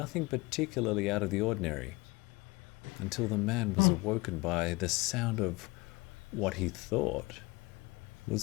particularly out of the ordinary, until the man was awoken by the sound of what he thought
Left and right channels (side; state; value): right; quieter; 23.8 dB